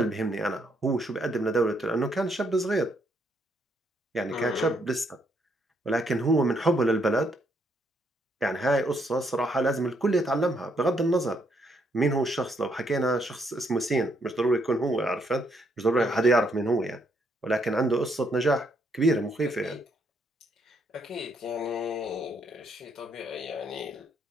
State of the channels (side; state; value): both; normal; correlation 0.73